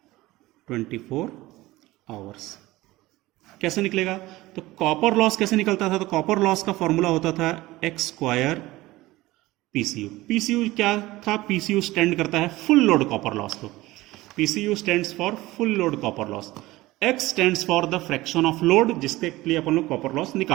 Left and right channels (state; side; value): quieter; left; 18.6 dB